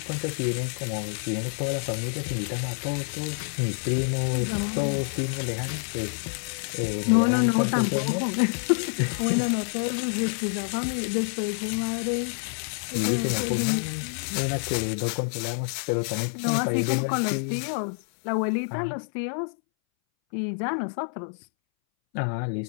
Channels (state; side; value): silent; right; 60 dB below the other